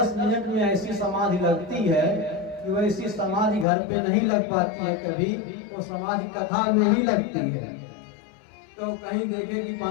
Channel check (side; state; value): right; drops out; at 3.7 s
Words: मिनट में ऐसी समाधि लगती है कि वैसी समाधि घर पे नहीं लग पाती है, कभी वो समाधि कथा में ही लगती है। तो कहीं देखे कि